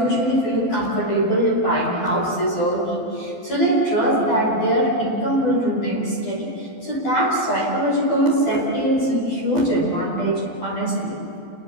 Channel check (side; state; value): right; late; 12 ms